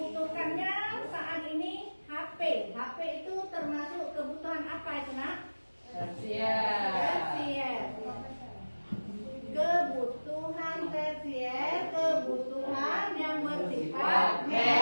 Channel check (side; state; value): both; inverted; correlation -1.00